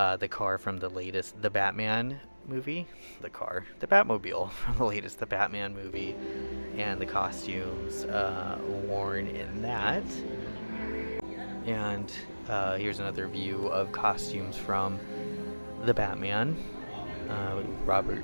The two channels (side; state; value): both; inverted; correlation -1.00